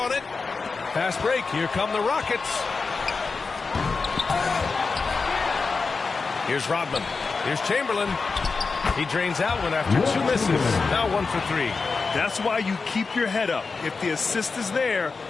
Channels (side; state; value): right; quieter; 4.5 dB